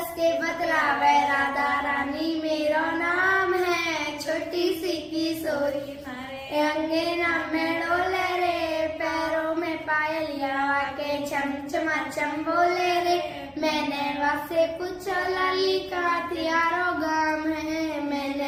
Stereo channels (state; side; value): identical; both; correlation 1.00